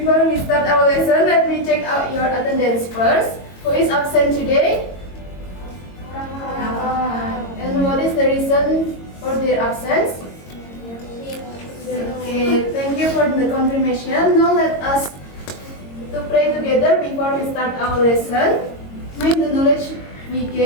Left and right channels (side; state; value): right; late; 22 ms